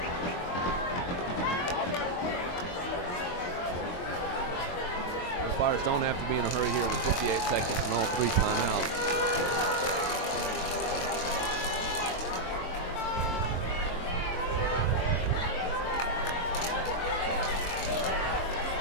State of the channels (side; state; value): right; late; 22 ms